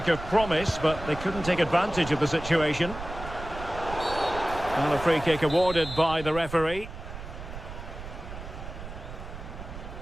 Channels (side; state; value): right; noise; rumble, 11 dB below the sound